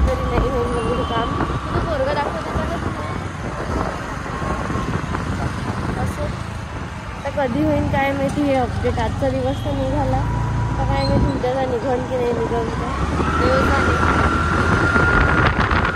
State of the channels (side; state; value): both; identical; correlation 1.00